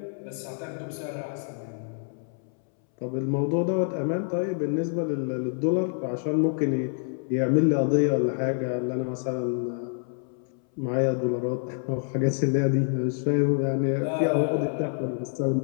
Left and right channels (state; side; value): silent; right; 60 dB below the other